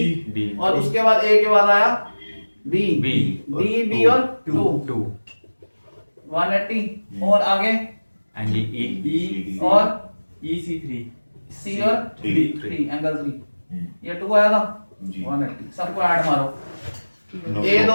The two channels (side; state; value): both; inverted; correlation -1.00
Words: D, और उसके बाद ए के बाद आया बी। B, डी बी और 2 180 और आगे एंगल ई और ई सी 3 सी और 3 एंगल 3। ये 2 आया था जी। 180। सबको ऐड मारो। No. ए